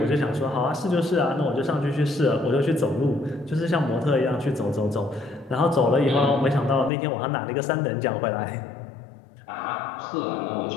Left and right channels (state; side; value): drops out; right; at 6.9 s